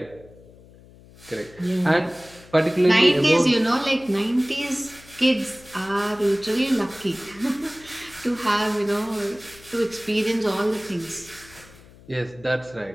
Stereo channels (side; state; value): left; noise; hum, 23 dB below the sound